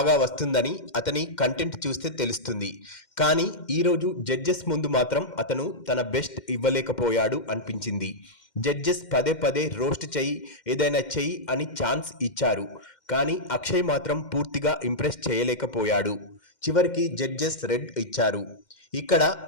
వస్తుందని అతని కంటెంట్ చూస్తే తెలుస్తుంది, కానీ ఈరోజు జడ్జెస్ ముందు మాత్రం అతను తన బెస్ట్ ఇవ్వలేకపోయాడు అనిపించింది. జడ్జెస్ పదే పదే రోస్ట్ చెయ్యి, ఏదైనా చెయ్యి అని ఛాన్స్ ఇచ్చారు, కానీ అక్షయ్ మాత్రం పూర్తిగా ఇంప్రెస్ చేయలేకపోయాడు. చివరికి జడ్జెస్ రెడ్ ఇచ్చారు. ఇక్కడ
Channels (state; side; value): late; right; 2.1 ms